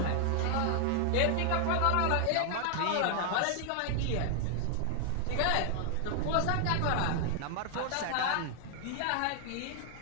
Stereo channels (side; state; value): both; different; correlation 0.00